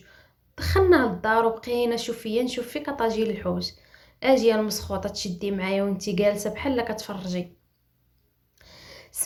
دخلنا للدار وبقينا نشوف فيك طاجيل الحوت. اجي المسخوطه تشدي معايا وانتي جالسه بحال كتفرجي.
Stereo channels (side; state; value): both; identical; correlation 1.00